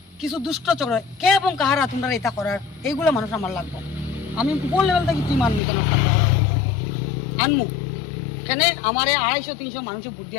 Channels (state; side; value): drops out; right; at 5.6 s